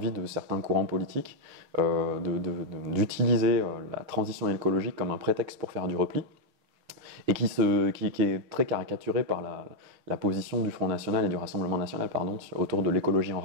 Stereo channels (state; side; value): late; left; 6.7 ms